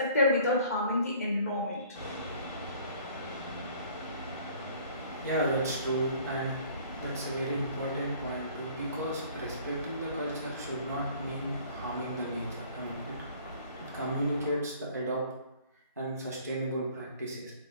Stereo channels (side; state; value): both; inverted; correlation -0.53